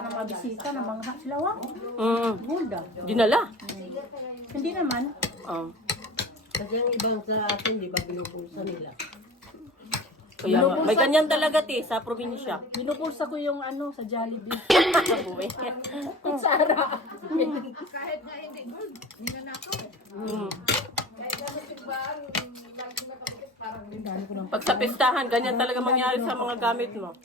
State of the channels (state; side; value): normal; both; correlation 0.39